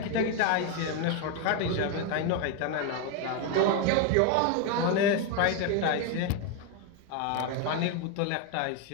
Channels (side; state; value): both; different; correlation 0.01